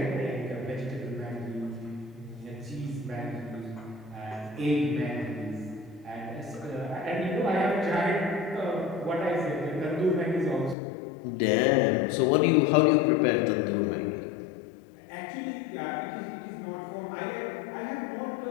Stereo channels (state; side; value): drops out; right; at 10.8 s